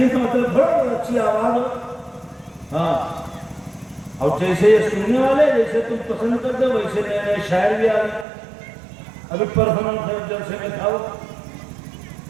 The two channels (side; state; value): left; drops out; at 8.2 s